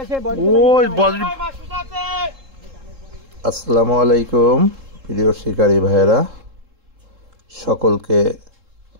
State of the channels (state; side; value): late; left; 3.7 ms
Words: ওই আসসালামু আলাইকুম প্রিয় শিকারী ভাইয়েরা, সকলকে